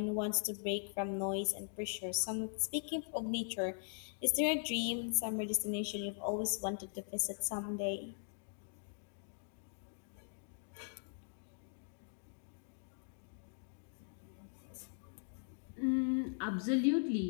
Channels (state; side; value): silent; right; digital silence